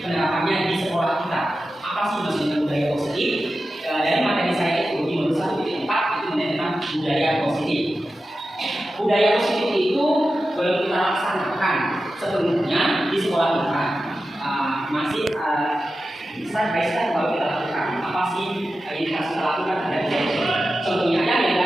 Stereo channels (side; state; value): both; normal; correlation 0.92